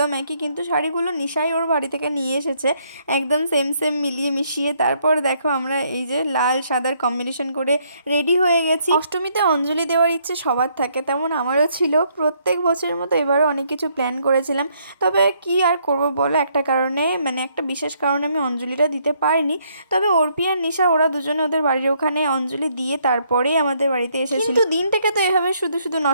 একই, কিন্তু শাড়িগুলো নিশাই ওর বাড়ি থেকে নিয়ে এসেছে একদম সেম সেম মিলিয়ে মিশিয়ে। তারপর দেখো আমরা এই যে লাল সাদার কম্বিনেশন করে রেডি হয়ে গেছি। অষ্টমীতে অঞ্জলি দেওয়ার ইচ্ছে সবার থাকে, তেমন আমারও ছিল। প্রত্যেক বছরের মতো এবারও অনেক কিছু প্ল্যান করেছিলাম, তবে কি আর করব বলো, একটা কারণে মানে একটা বিশেষ কারণে আমি অঞ্জলিটা দিতে পারিনি। তবে অর্পি আর নিশা ওরা দুজনে ওদের বাড়ির ওখানে অঞ্জলি দিয়ে তারপরেই আমাদের বাড়িতে এসেছিল। কিন্তু দিনটাকে তো এভাবে শুধু শুধু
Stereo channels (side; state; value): both; inverted; correlation -0.70